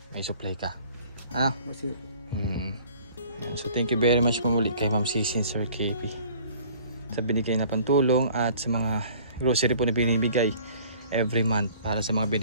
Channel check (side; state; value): both; inverted; correlation -0.51